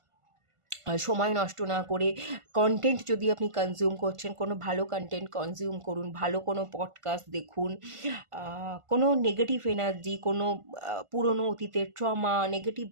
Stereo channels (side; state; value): left; late; 1.5 ms